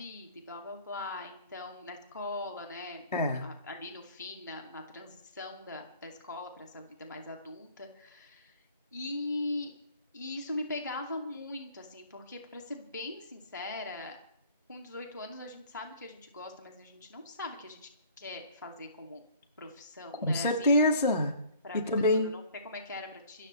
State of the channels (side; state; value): both; inverted; correlation -0.52